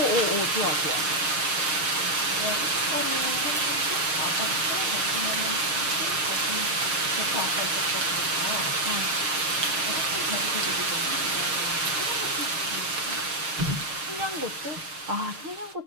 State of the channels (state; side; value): late; left; 6.5 ms